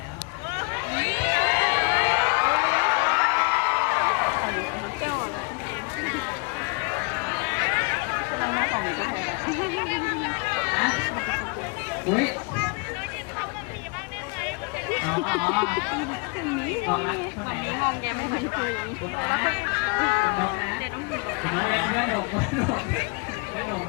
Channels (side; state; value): right; quieter; 32.9 dB